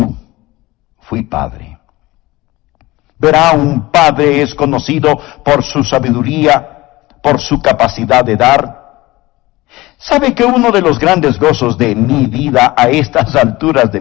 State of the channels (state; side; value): quieter; right; 19.7 dB